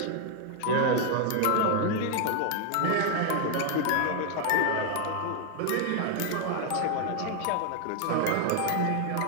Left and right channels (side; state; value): both; different; correlation 0.00